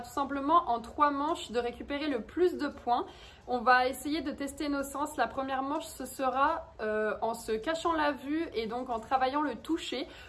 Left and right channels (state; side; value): identical; both; correlation 1.00